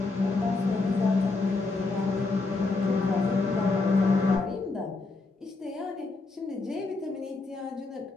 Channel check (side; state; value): right; quieter; 3.6 dB